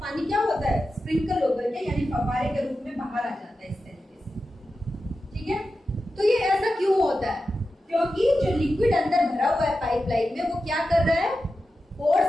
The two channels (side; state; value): both; normal; correlation 0.91